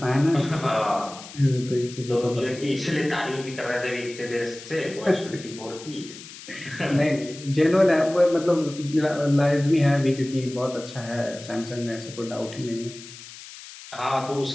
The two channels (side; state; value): left; noise; hiss, 15 dB below the sound